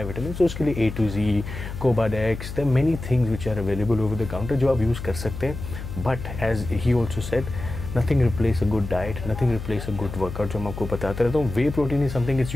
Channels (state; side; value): noise; left; hum, 9 dB below the sound